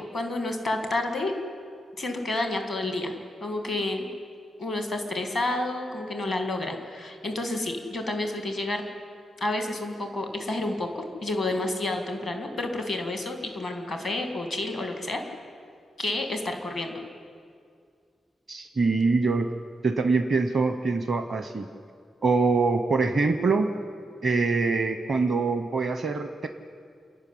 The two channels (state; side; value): normal; both; correlation 0.81